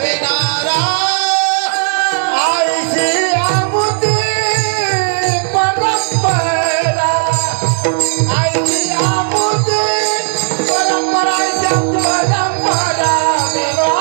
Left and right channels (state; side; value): silent; left; 67 dB below the other